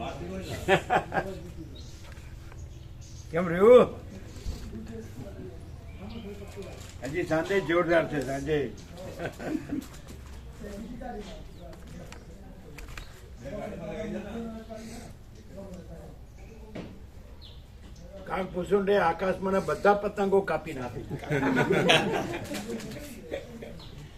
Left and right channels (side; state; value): both; identical; correlation 1.00